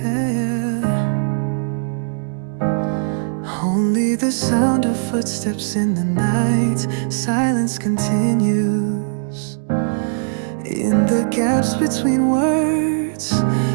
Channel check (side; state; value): left; silent; digital silence